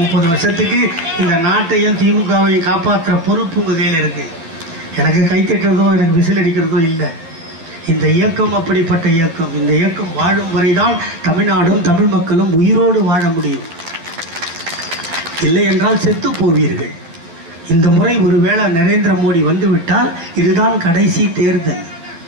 வருஷத்துக்கு இந்த நாட்டையும் திமுகவையும் காப்பாற்றுற பொறுப்பு உங்கள் கையில் இருக்குது. எனக்கு கைத்தட்டுறதோ எனக்கு விசில் அடிக்கிறதோ இல்லை. இந்த இயக்கம் அப்படிப்பட்ட இயக்கம். இந்த இயக்கம் வாழும் வரைதான் தமிழ்நாடும் தமிழ் மக்களும் உயிரோடு வாழ முடியும். இல்லை என்றால் செத்து போவீர்கள். இந்த முறை ஒருவேளை நரேந்திர மோடி வந்துவிட்டால் இதுதான் கடைசி தேர்தல்.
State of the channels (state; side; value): late; left; 12 ms